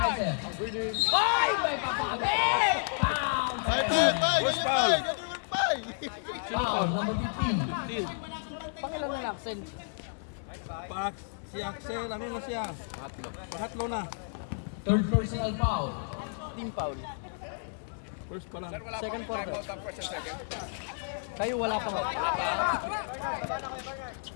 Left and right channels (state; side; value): silent; right; 57 dB below the other